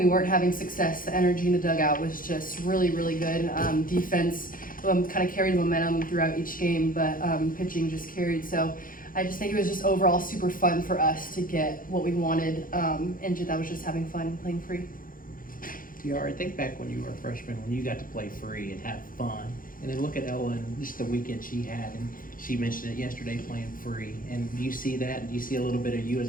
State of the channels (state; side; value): late; right; 0.40 ms